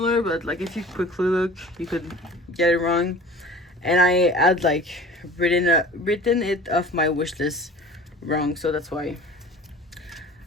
but like if you quickly look, you could get it wrong. And I had like written it off my wish list wrong, so that's why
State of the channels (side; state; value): both; normal; correlation 0.42